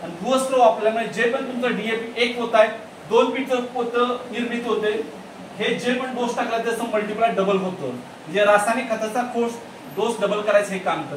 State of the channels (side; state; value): both; identical; correlation 1.00